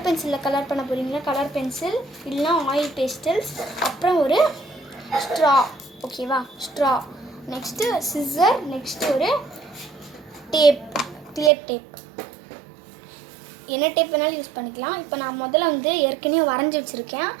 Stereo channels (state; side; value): drops out; left; at 11.5 s